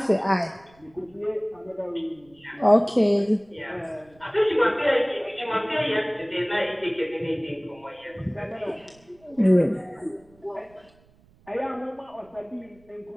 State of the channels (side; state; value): right; noise; rumble, 30 dB below the sound